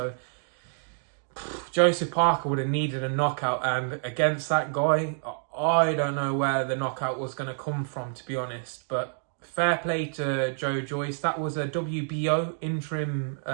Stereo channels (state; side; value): silent; left; digital silence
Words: Joseph Parker would have needed a knockout, and against that guy, I don't know where the knockout was going to come from, to be honest. But fair play to Joe Joyce. That was a WBO interim